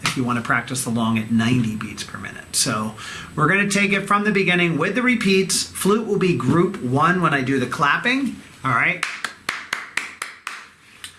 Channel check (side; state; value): both; identical; correlation 1.00